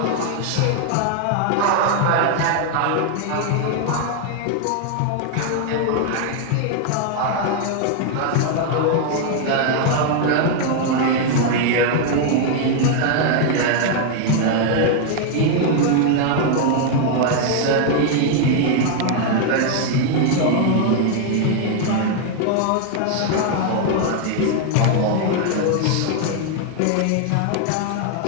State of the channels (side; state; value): both; different; correlation 0.00